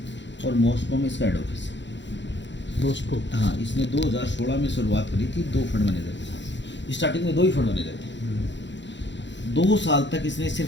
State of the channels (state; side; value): late; right; 0.52 ms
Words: और मॉस्को में इसका हेड ऑफिस है। मॉस्को। हाँ, इसने 2016 में शुरुआत करी थी 2 फंड मैनेजर के साथ। स्टार्टिंग में 2 ही फंड मैनेजर थे। 2 साल तक इसने